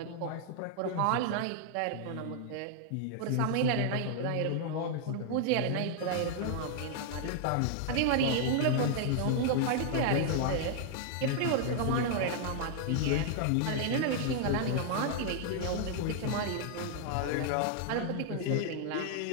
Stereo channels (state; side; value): different; both; correlation 0.00